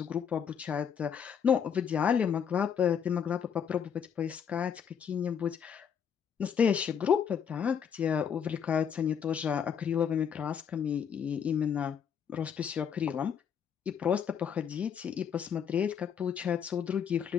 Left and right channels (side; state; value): right; quieter; 7.7 dB